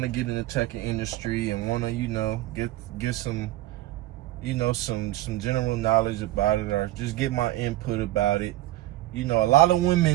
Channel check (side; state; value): left; quieter; 16.1 dB